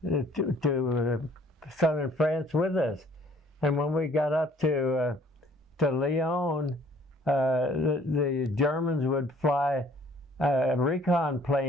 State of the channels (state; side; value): normal; both; correlation 0.57